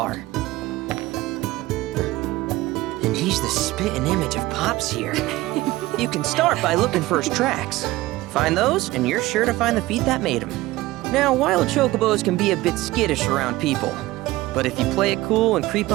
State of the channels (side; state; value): left; quieter; 18.2 dB